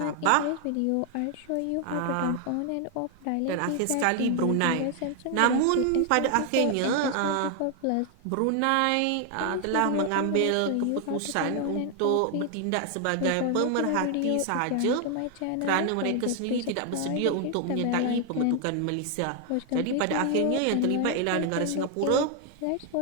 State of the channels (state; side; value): different; both; correlation 0.00